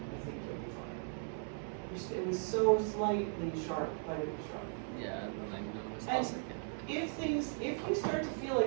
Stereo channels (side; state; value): left; silent; 53 dB below the other